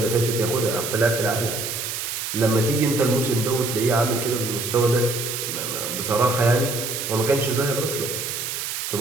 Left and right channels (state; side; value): noise; right; hiss, 4 dB below the sound